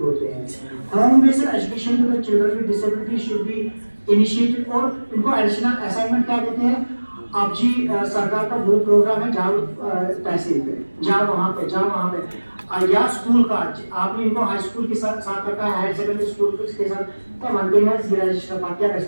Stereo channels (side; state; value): both; inverted; correlation -1.00